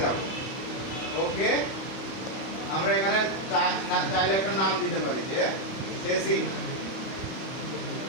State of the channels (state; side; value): late; right; 31 ms